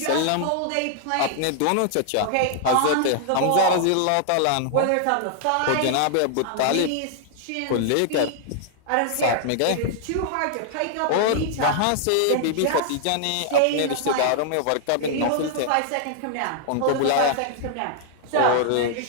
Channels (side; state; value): both; different; correlation -0.01